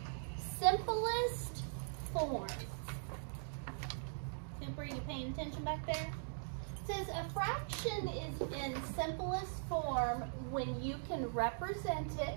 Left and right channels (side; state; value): left; silent; digital silence